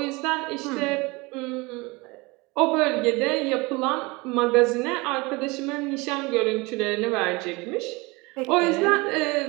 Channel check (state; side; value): quieter; left; 24.8 dB